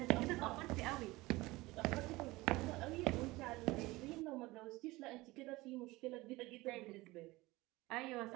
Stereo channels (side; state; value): left; quieter; 20.7 dB